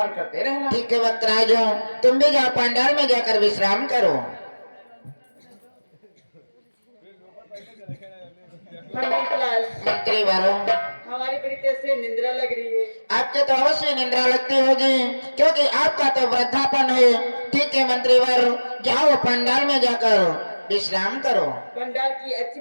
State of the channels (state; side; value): inverted; both; correlation -1.00